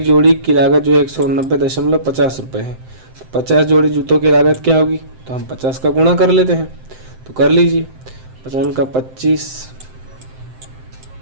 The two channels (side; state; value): left; late; 7.7 ms